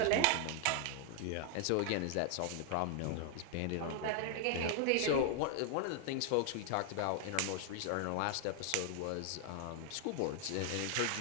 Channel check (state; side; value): different; both; correlation 0.00